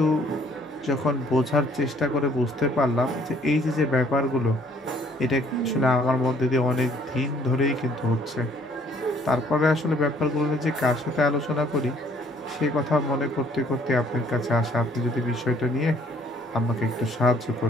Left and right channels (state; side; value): normal; both; correlation 0.61